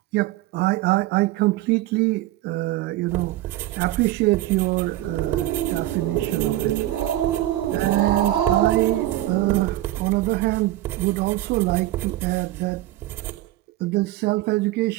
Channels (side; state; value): left; quieter; 15.5 dB